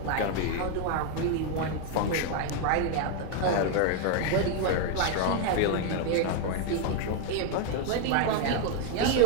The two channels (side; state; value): both; different; correlation 0.01